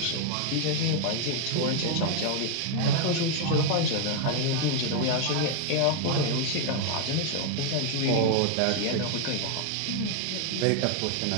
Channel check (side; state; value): both; different; correlation 0.00